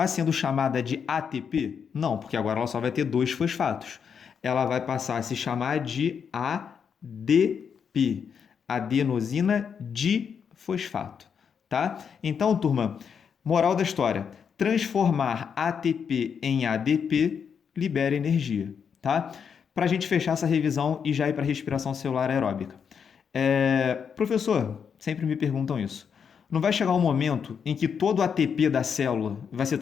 sendo chamada de ATP? Não, porque agora ela só vai ter dois fosfatos. Ela vai passar a se chamar de ADP, adenosina difosfato, tá? Então, turma, moral da história: transformar ATP em ADP libera energia, tá? Para a gente fechar essa revisão e já ir para a respiração celular aeróbica. Professor, sempre me perguntam isso. Não vai chegar um momento em que todo o ATP da célula vai ser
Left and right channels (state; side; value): quieter; right; 6.9 dB